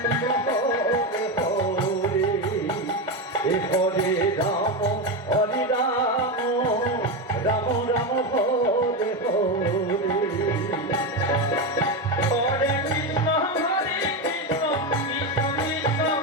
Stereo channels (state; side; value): normal; both; correlation 0.13